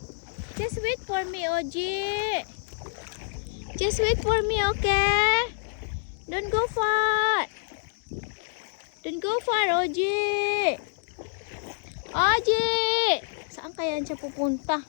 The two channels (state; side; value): silent; right; digital silence